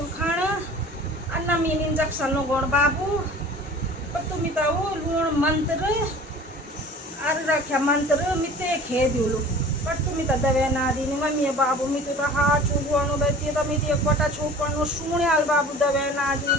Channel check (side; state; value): both; normal; correlation 0.43